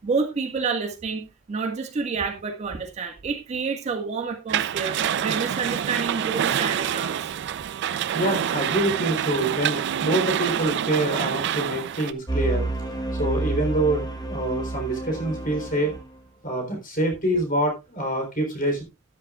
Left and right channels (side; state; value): left; quieter; 3.6 dB